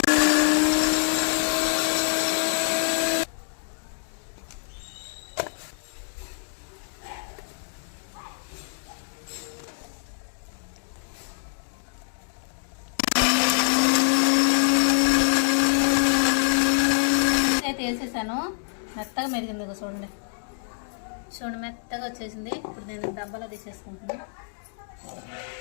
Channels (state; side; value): silent; right; digital silence